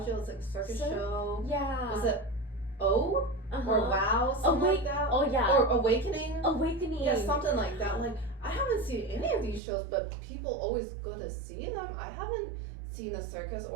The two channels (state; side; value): drops out; left; at 9.6 s